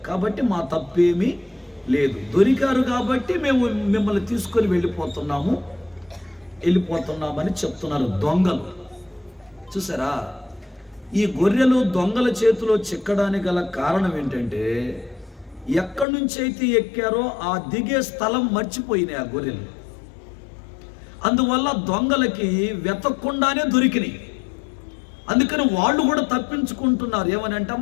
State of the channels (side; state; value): right; drops out; at 16.1 s